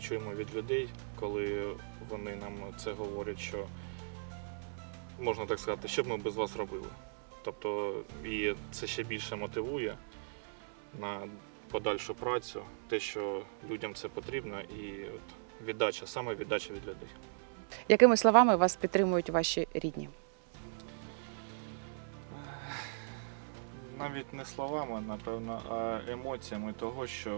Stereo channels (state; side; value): silent; left; digital silence